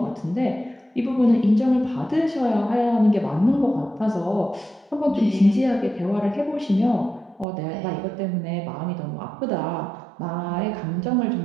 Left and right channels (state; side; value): drops out; left; at 7.5 s